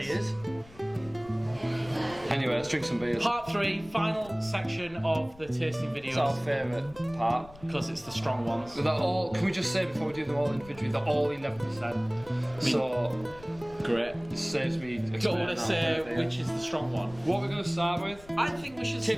Anyway, let's drink some beers. Part 3, final section of the tasting videos. It's our favourite part. Because it's the strong ones. They're all, can we just say before we do them all individually, they're all 11%. So, great. it saves me. Don't want to say which is the strong one. What we're going to start with? I think we should.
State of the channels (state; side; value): noise; left; rumble, 20 dB below the sound